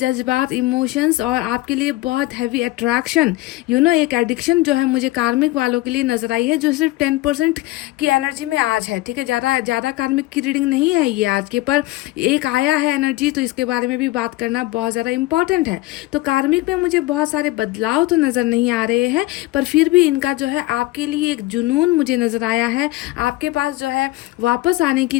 इमोशंस और आपके लिए बहुत हैवी अट्रैक्शन, एक एडिक्शन जो है मुझे कार्मिक वालों के लिए नज़र आई है, जो सिर्फ 10% की एनर्जी में आज है, ठीक है। ज़्यादा कार्मिक की रीडिंग नहीं है ये आज के, पर एक आया है एनर्जी, तो इसके बारे में भी बात करना बहुत ज़्यादा इंपॉर्टेंट है। तो कार्मिक में मुझे बहुत सारे बदलाव तो नज़र नहीं आ रहे हैं, पर फिर भी इनका जो है आपके लिए एक जुनून मुझे नज़र आया है। आपके पास जो है वापस आने की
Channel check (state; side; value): quieter; right; 18.5 dB